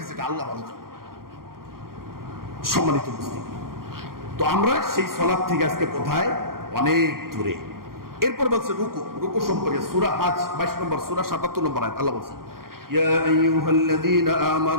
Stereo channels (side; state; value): left; late; 0.92 ms